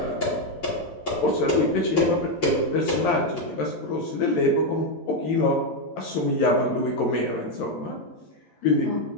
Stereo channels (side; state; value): right; late; 11 ms